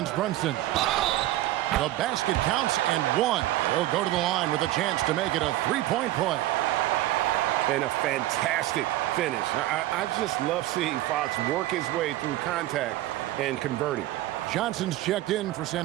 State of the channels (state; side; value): quieter; left; 15.4 dB